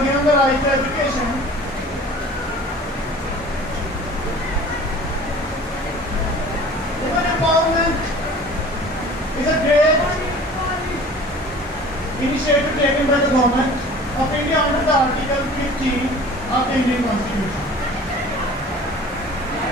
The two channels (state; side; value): normal; both; correlation 0.44